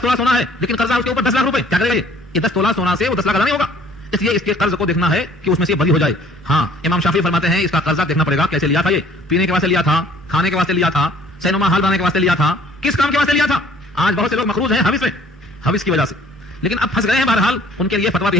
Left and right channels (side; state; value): both; normal; correlation 0.55